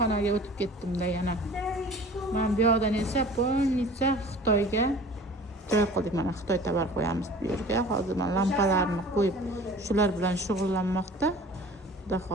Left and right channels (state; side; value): normal; both; correlation 0.44